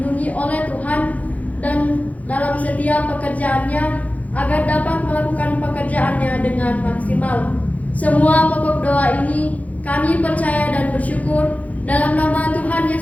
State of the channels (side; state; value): right; late; 0.071 ms